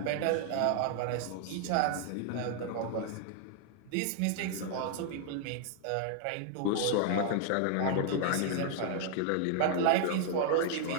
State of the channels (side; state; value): both; different; correlation 0.00